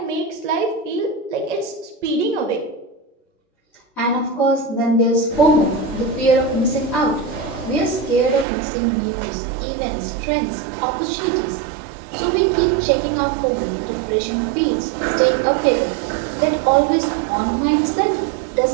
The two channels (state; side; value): drops out; left; at 8.5 s